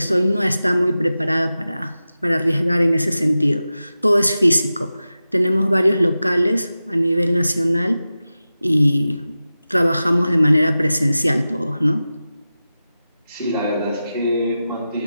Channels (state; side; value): inverted; both; correlation -0.94